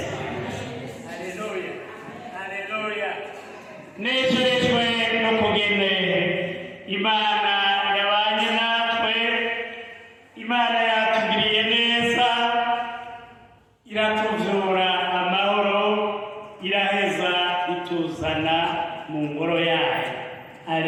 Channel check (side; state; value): both; identical; correlation 1.00